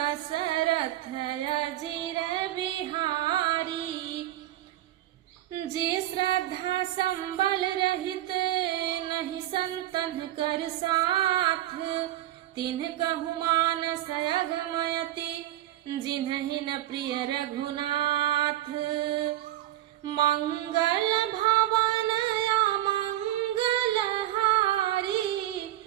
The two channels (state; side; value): quieter; left; 14.1 dB